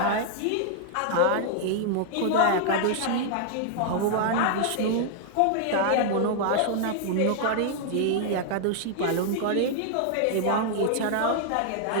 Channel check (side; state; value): both; different; correlation -0.01